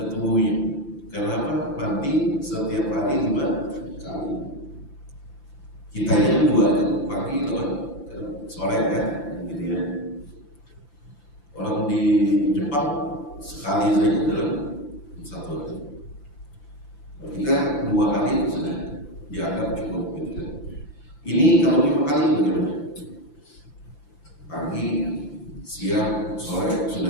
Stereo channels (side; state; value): right; late; 5.9 ms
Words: tubuhnya. Kenapa? Mandi setiap hari 5 kali. Kita yang 2 pagi sore kan, gitu ya. Orang di Jepang sekali saja dalam 1 hari. Ketika 2 kali sudah dianggap cukup, gitu kan. Ini kalau 5 kali bagaimana? Pagi, siang, sore